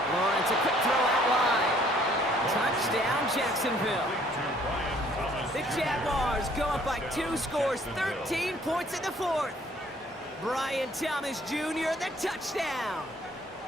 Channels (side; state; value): both; normal; correlation 0.60